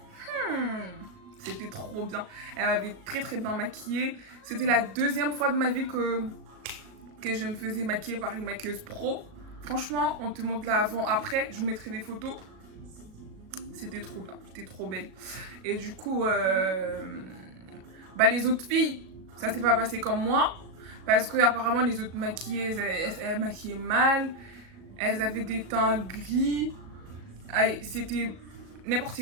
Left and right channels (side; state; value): left; late; 37 ms